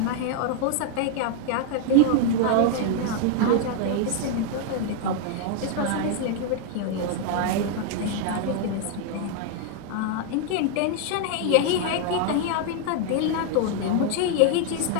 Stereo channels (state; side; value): different; both; correlation 0.00